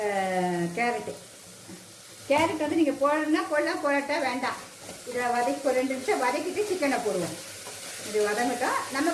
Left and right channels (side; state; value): both; identical; correlation 1.00